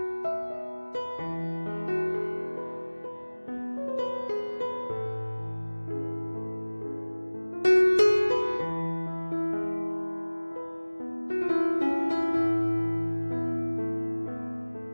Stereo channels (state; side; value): inverted; both; correlation -1.00